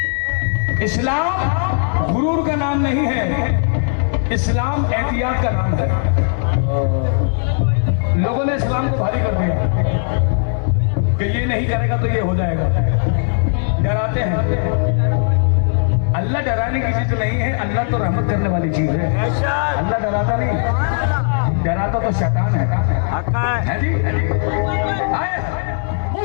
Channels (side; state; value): right; silent; digital silence